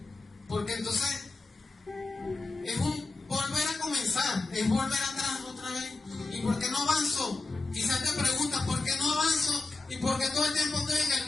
porque entonces es un volver a comenzar, es volver atrás otra vez. ¿Y por qué no avanzo? Quizás te preguntas, ¿por qué no avanzo? ¿Y por qué todo el tiempo estoy en el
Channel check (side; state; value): right; quieter; 3.5 dB